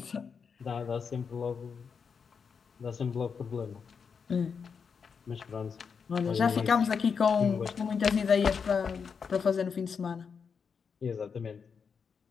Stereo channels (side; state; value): right; quieter; 6.1 dB